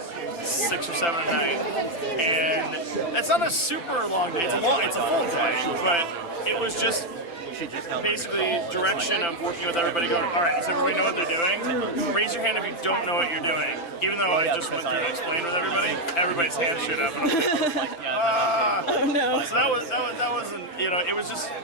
or 7 at night, and it's not a super long day. It's a full day, but it was just basically direction of working with everybody going, all right, does everybody know what they're doing? Raise your hand if you don't know what you're doing. Even though I just went through and explained with everybody, everybody's hands shoot up, and I'm like, Oh no. so that wasn't, it was just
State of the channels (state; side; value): late; right; 5.9 ms